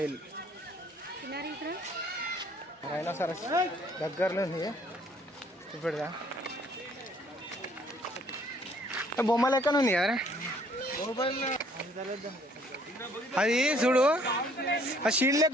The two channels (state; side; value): normal; both; correlation 0.61